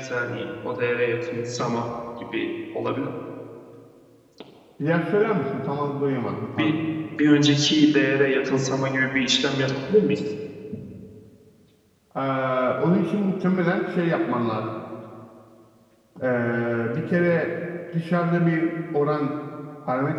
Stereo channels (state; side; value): identical; both; correlation 1.00